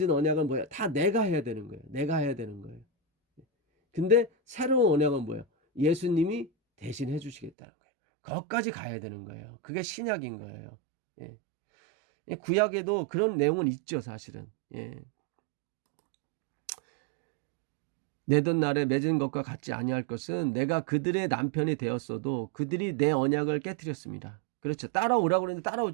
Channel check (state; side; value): drops out; left; at 7.5 s